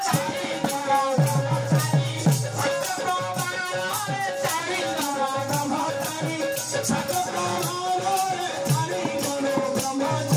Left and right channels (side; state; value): both; identical; correlation 1.00